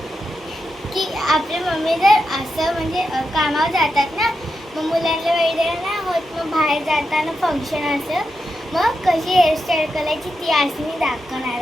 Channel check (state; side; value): normal; both; correlation 0.87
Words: की आपल्या मम्मी जर असं म्हणजे कामावर जातात ना, मग मुलांना वगैरे नाही होत, मग बाहेर जाताना फंक्शन असं, मग कशी हेअरस्टाईल करायची ती आज मी दाखवणार